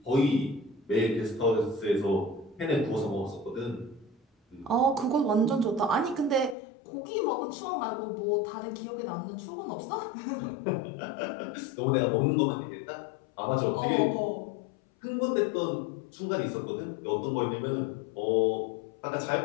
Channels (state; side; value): drops out; right; at 6.6 s